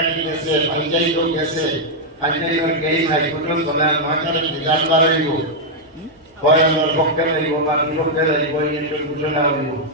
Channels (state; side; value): normal; both; correlation -0.03